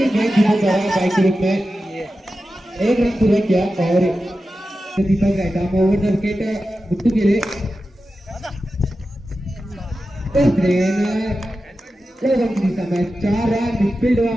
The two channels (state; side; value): normal; both; correlation 0.92